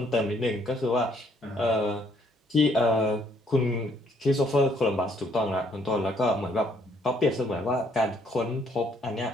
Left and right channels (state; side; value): normal; both; correlation 0.67